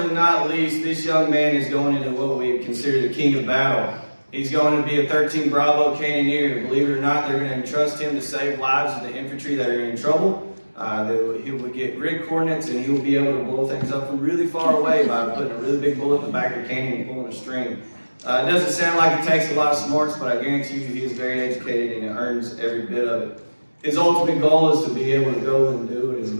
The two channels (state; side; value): inverted; both; correlation -1.00